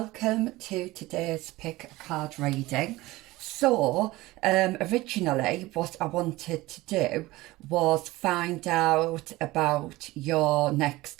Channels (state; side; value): quieter; left; 19.3 dB